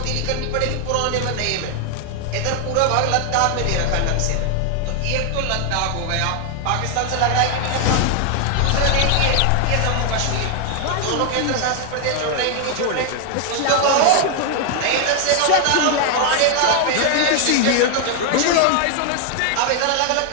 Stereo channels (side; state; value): both; different; correlation 0.00